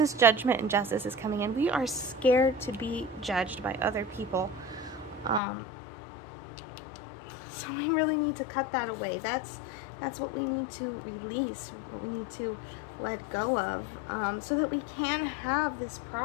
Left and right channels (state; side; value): drops out; right; at 5.4 s